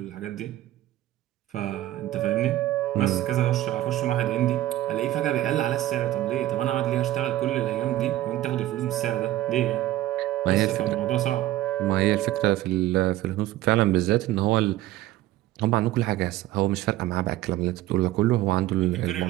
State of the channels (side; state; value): left; quieter; 14.9 dB